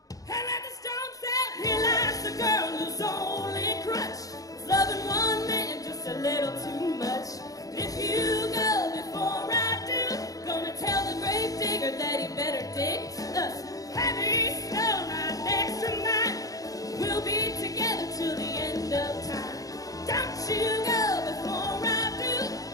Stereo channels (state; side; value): late; right; 0.17 ms